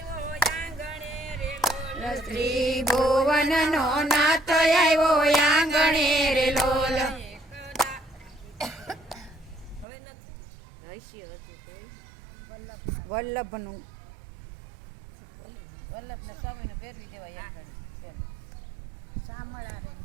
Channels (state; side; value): drops out; left; at 9.9 s